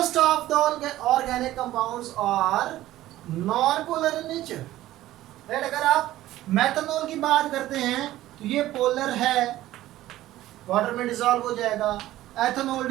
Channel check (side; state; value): left; quieter; 15.0 dB